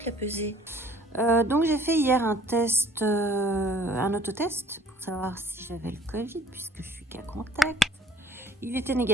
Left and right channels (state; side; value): normal; both; correlation 0.55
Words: la pesée. Donc j'ai fait hier un test, un autotest pour savoir si j'avais le Covid puisque je suis cas contact. Il était